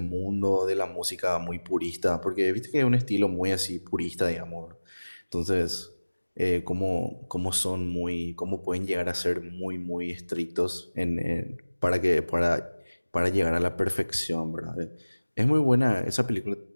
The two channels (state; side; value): inverted; both; correlation -1.00